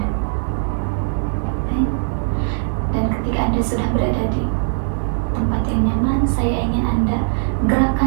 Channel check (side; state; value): left; silent; 63 dB below the other